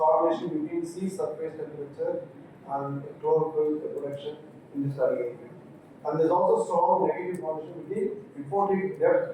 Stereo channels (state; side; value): identical; both; correlation 1.00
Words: between sea surface temperature and chlorophyll production in the study area. And there is also strong negative correlation between reported